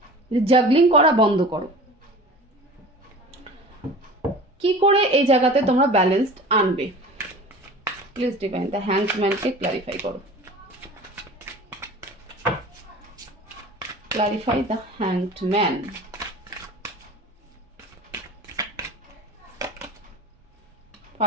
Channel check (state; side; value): normal; both; correlation 0.38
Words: যে জাগলিং করা বন্ধ করো। কি করে এই জায়গাতে তোমরা ব্যালেন্সড আনবে? প্লিজ ডিভাইন দ্য হ্যাংডম্যানকে ক্লারিফাই করো। Clarify the hanged man.